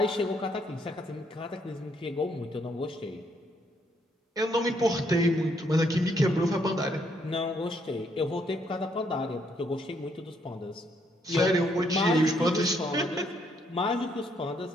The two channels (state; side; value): normal; both; correlation 0.72